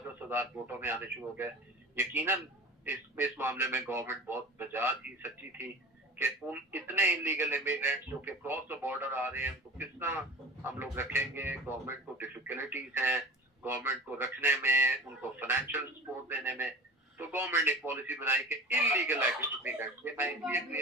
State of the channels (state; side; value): normal; both; correlation 0.37